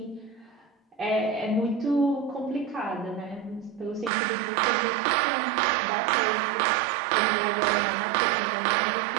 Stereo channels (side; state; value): left; drops out; at 4.1 s